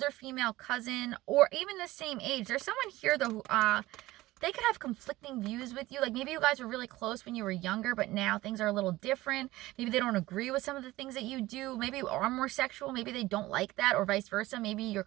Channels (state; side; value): quieter; left; 17.9 dB